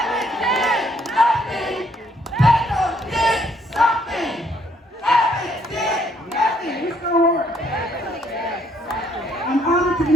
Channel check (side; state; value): both; normal; correlation 0.68